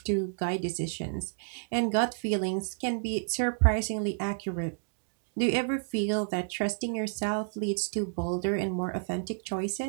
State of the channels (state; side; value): silent; left; digital silence